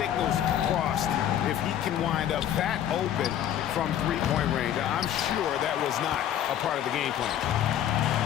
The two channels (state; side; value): quieter; right; 10.6 dB